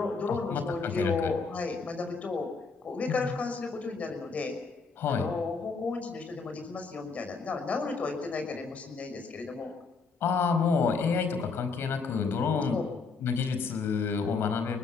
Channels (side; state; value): right; quieter; 4.6 dB